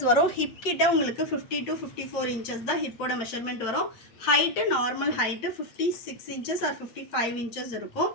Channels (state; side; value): late; right; 8.5 ms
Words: வரும். ஹிப் கிட்ட உங்களுக்கு 50 to 54 inches தான் ஹிப்போட மெஷர்மெண்ட் வரும். Height normal height 56 inches or 55 inches இருக்கும்.